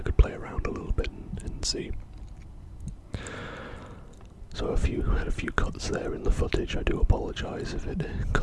play around a little bit and see. So had a few cuts there in the footage. I do apologise if it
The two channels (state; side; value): identical; both; correlation 1.00